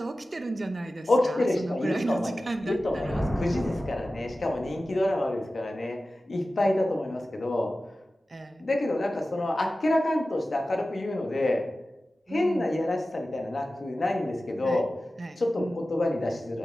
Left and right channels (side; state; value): both; normal; correlation 0.95